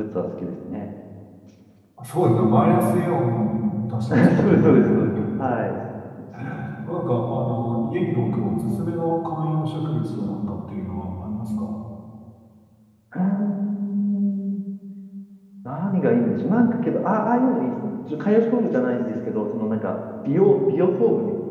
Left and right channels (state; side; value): identical; both; correlation 1.00